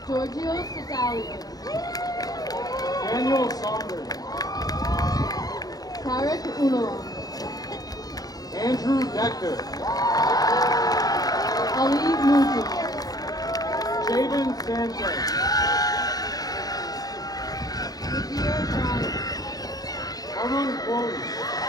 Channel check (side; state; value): right; late; 0.18 ms